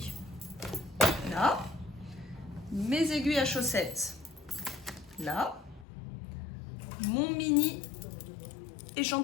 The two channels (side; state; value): right; drops out; at 5.9 s